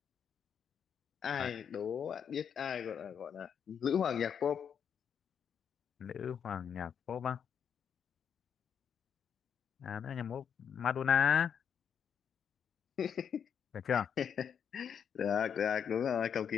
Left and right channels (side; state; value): right; quieter; 7.8 dB